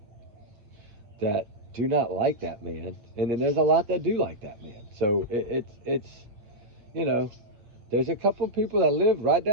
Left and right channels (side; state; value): left; late; 8.3 ms